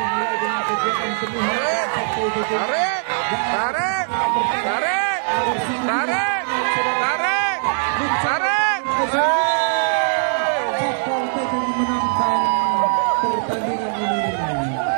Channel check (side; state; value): left; silent; digital silence